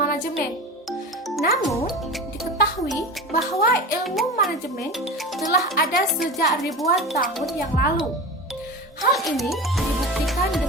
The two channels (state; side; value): normal; both; correlation 0.29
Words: Namun, diketahui bahwa ilmu manajemen telah ada sejak ribuan tahun yang lalu. Hal ini dibuktikan